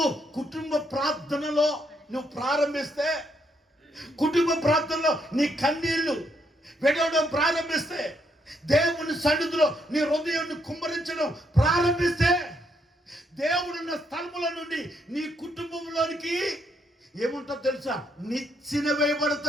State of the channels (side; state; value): both; normal; correlation 0.75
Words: కుటుంబ ప్రార్థనలో నువ్వు ప్రారంభిస్తే, కుటుంబ ప్రార్థనలో నీ కన్నీళ్లు వెడవడం ప్రారంభిస్తే, దేవుని సన్నిధిలో నీ హృదయాన్ని కుమ్మరించడం ప్రారంభిస్తే, దేవుడున్న స్థలముల నుండి నీ కుటుంబంలోనికి ఏముంటో తెలుసా? నిచ్చెన